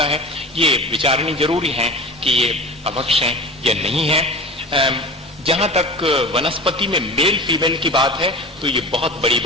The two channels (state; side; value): normal; both; correlation 0.35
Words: है, ये विचारणी जरूरी है कि ये अभक्ष है या नहीं है। जहां तक वनस्पति में मेल फीमेल की बात है तो ये बहुत बड़ी